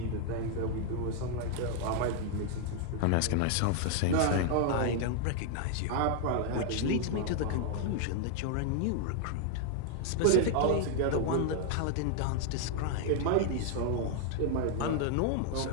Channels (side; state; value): both; different; correlation 0.00